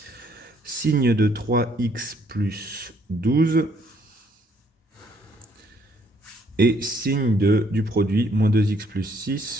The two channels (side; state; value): both; normal; correlation 0.67